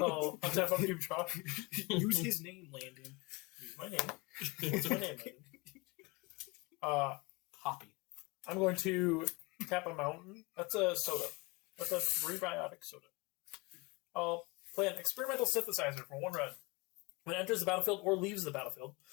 tap up your draw. Use his name, Landon. Use my name. Use my name, Landon. Poppy. I'm going to tap a mountain. That's a soda. That's a prebiotic soda. I'll play an experimental synthesizer for 1 red. When it enters the battlefield or leaves the battlefield,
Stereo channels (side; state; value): right; quieter; 26.3 dB